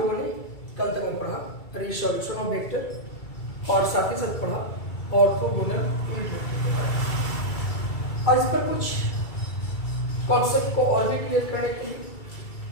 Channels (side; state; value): right; late; 2.3 ms